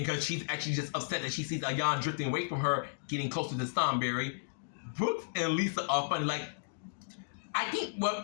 because she's actually just upset that she sees Ayan drifting away from her, getting closer to Stormberry. Brooks and Lisa are funny. I think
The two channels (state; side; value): silent; right; digital silence